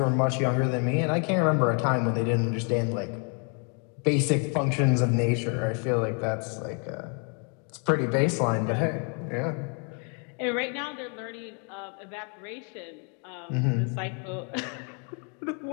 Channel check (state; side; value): quieter; right; 39.1 dB